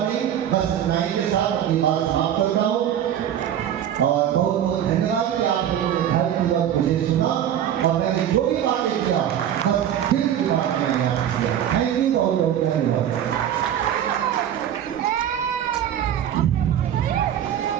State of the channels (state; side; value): quieter; left; 10.2 dB